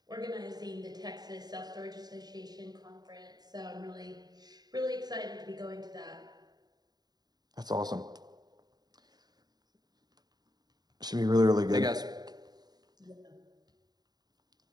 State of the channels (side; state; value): left; late; 0.20 ms